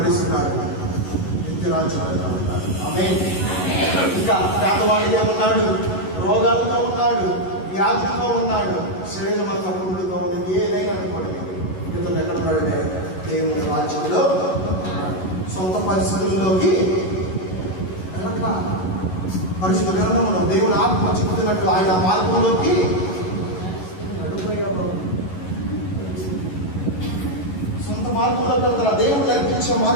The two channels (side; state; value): right; late; 11 ms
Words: నిత్యరాజ్యం ఉంటాడు. ఆమేన్. ఇంకా పేదవాడిగా ఉన్నాడు, రోగాలతో ఉన్నాడు, వ్యాధితో ఉన్నాడు, శరీరం అంతా పురుగులతో ఉన్నది. ఏదైనా అనుకోండి, ఇతను ఎక్కడ ఉన్నాడంటే దేవుని రాజ్యంలో. సొంత పరిస్థితుల్లోకి వెళ్ళట్లా. పరిశుద్ధ గ్రంథంలో దేవుని ఆత్మ చెబుతున్నట్టు ఆయన మార్గంలోకి నడిపోయావు. సొంత మార్గంలోకి వెళ్తారా? దేవుడు నేర్పించే